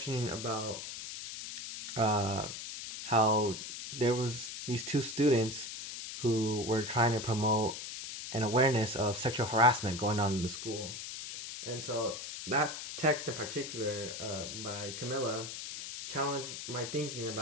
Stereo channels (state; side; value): noise; left; hiss, 8 dB below the sound